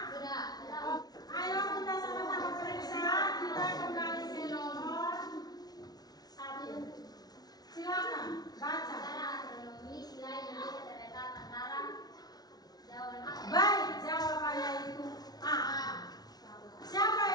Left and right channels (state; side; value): late; right; 0.19 ms